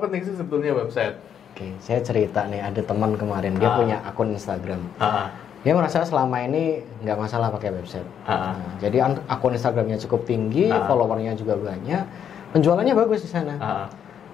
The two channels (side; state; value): right; quieter; 8.6 dB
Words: sih sebetulnya website? Saya cerita nih, ada teman kemarin dia punya akun Instagram. Dia merasa selama ini nggak masalah pakai website. Jadi akun Instagramnya cukup tinggi, followernya juga banyak, penjualannya bagus di sana.